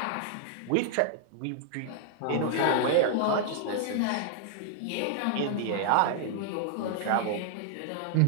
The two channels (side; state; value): both; different; correlation -0.01